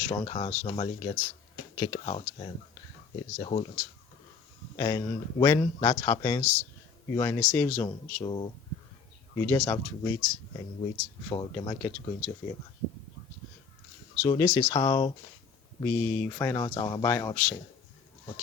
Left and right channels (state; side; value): quieter; right; 5.6 dB